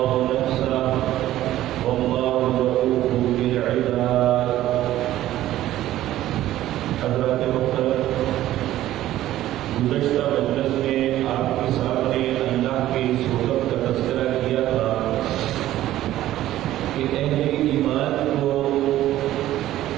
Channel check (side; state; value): left; quieter; 14.0 dB